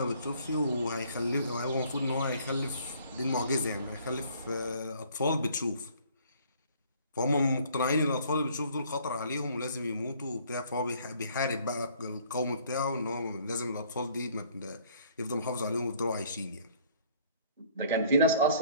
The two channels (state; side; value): inverted; both; correlation -0.58